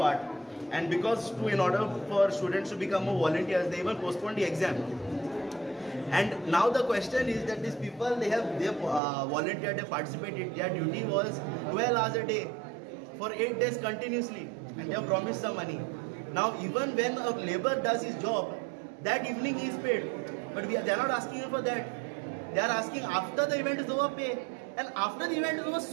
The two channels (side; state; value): left; drops out; at 9.0 s